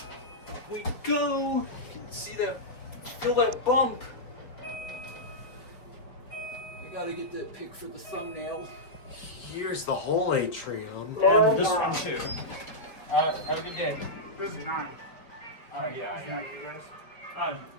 Up we go. You can see that. Feel that bump. We gotta get that pic for the thumbnail. Here's the whole atrium. And this one too. Have a good day. This is 9. Oh yeah. You guys? I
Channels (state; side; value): late; right; 4.5 ms